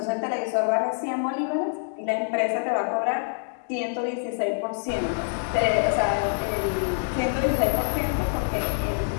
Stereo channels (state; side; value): silent; right; digital silence